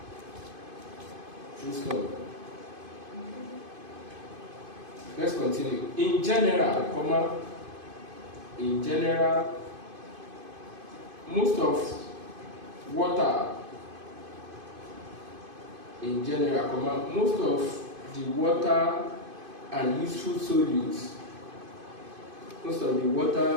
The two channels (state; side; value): late; left; 2.5 ms